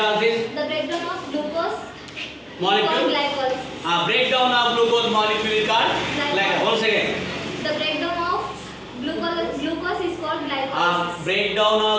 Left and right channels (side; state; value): both; identical; correlation 1.00